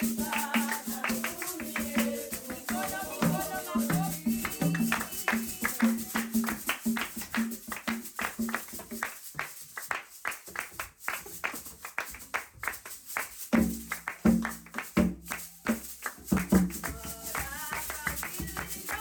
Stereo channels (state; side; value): identical; both; correlation 1.00